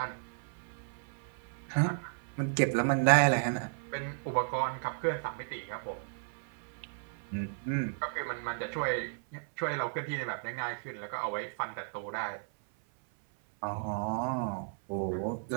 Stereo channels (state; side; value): silent; left; 55 dB below the other